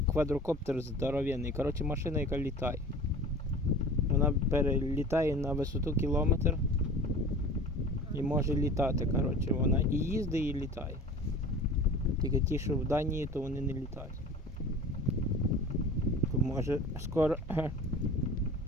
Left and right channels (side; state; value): both; normal; correlation 0.39